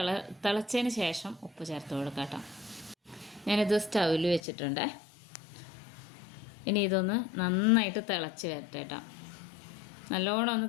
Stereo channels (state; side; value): drops out; right; at 4.4 s